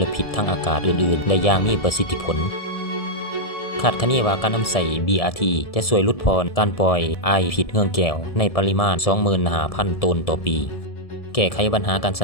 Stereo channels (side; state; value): right; late; 1.7 ms